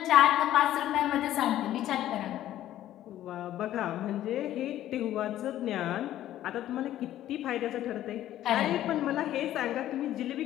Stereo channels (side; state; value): right; quieter; 12.9 dB